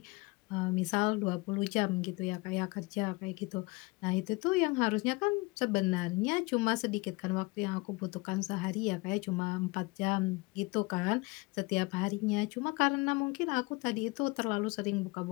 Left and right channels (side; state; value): right; quieter; 25.4 dB